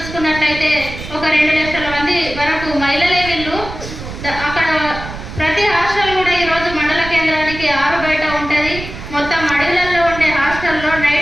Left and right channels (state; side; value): noise; right; rumble, 11 dB below the sound